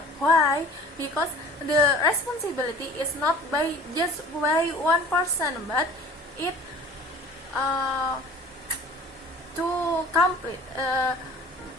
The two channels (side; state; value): both; normal; correlation 0.45